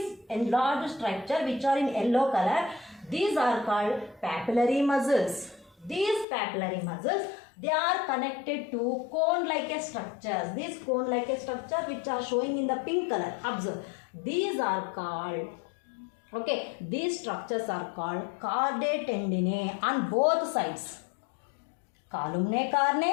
enlarged structure which are in yellow color, these are called papillary muscles. These papillary muscles, they are connected to cone-like structures. These cone-like structures which are showing in the pink color, observe. These are called, these structures are called chordae tendineae on both sides. Columnae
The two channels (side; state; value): right; drops out; at 6.2 s